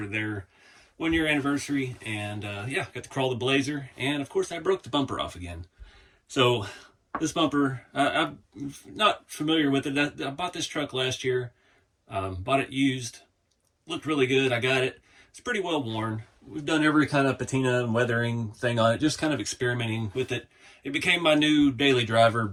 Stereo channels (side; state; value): both; identical; correlation 1.00